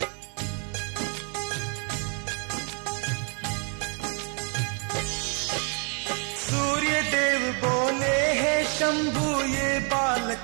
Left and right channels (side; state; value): left; quieter; 38.6 dB